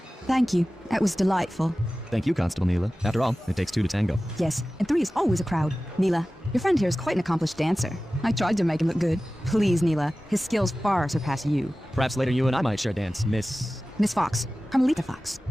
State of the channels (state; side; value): normal; both; correlation 0.96